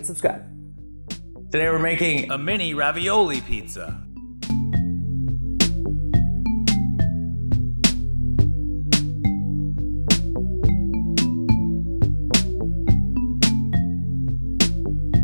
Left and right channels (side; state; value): both; inverted; correlation -1.00